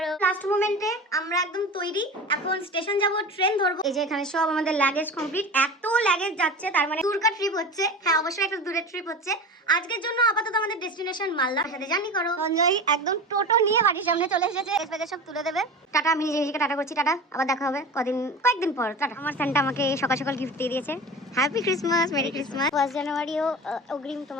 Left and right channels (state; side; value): normal; both; correlation 0.32